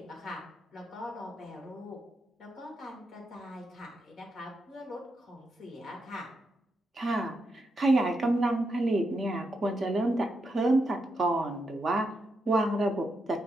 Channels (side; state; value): both; normal; correlation 0.83